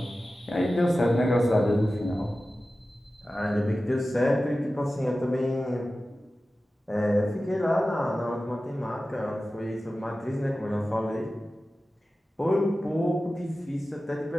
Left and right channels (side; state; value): both; normal; correlation 0.95